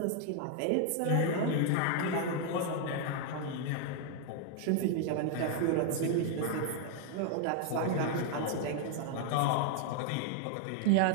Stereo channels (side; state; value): both; different; correlation 0.00